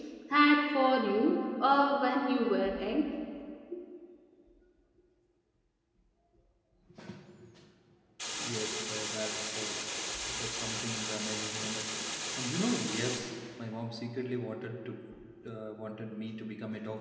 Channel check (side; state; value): both; identical; correlation 1.00